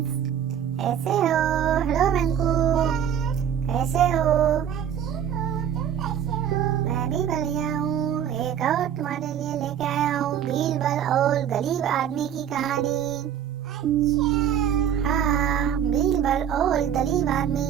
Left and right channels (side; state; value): left; quieter; 9.1 dB